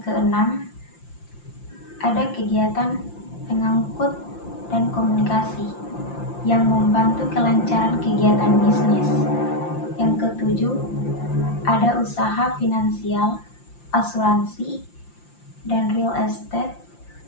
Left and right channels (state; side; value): late; right; 5.8 ms